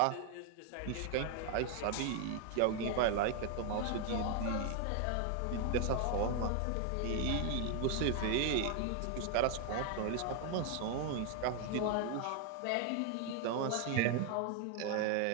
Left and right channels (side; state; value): both; different; correlation 0.00